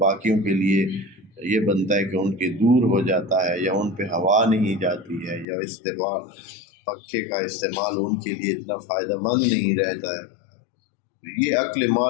کے لیے یہ بنتا ہے کہ ان کے دور ہو جاتا ہے، یا ان پہ ہوا نہیں جاتی ہے، یا پنکھے کا استعمال ان کے لیے اتنا فائدہ مند نہیں رہتا ہے۔ تو یہ عقل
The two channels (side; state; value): right; drops out; at 5.5 s